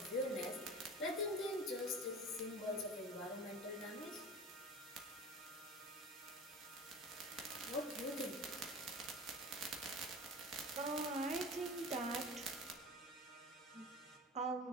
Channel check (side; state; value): both; normal; correlation 0.35